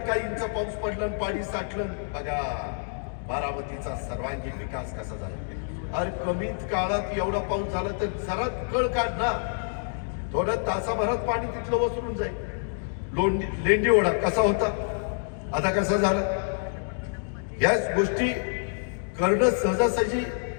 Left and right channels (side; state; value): right; silent; digital silence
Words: काही इंच पाऊस पडला आणि पाणी साठलं, बघा बारामतीचा सर्वांगीण विकास कसा झाला. अरे कमीत काळात एवढा पाऊस झाला तर जरा कळ काढ ना, थोड्या तासाभरात पाणी तिथलं वसरून जाईल. लेंडी ओढा कसा होता, आता कसा झाला. याच गोष्टी करणं सहजासहजी